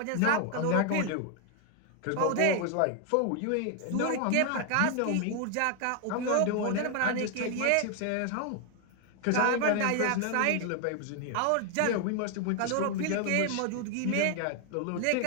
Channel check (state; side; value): different; both; correlation 0.00